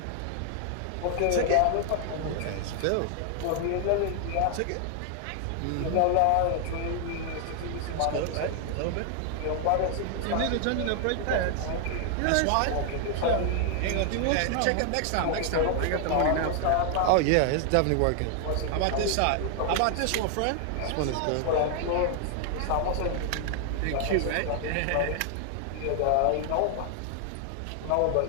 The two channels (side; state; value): both; different; correlation 0.00